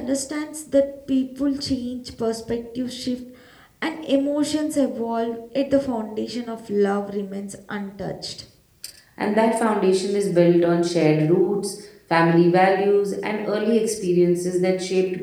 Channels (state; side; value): identical; both; correlation 1.00